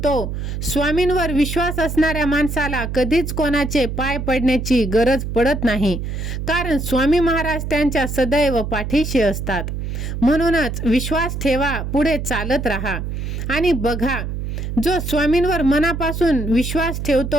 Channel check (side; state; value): right; noise; hum, 4 dB below the sound